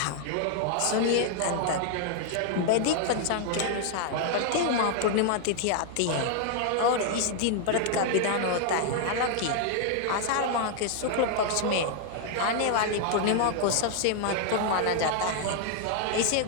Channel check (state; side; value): different; both; correlation 0.00